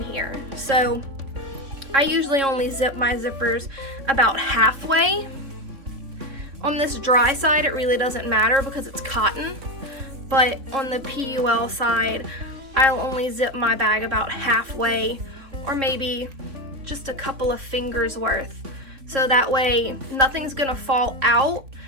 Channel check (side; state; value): left; late; 3.3 ms